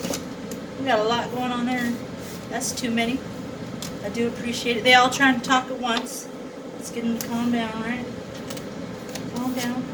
We got a lot going on there. That's too many. I do appreciate it. They all trying to talk at once. Let's get them to calm down, right? Calm down.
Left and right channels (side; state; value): both; identical; correlation 1.00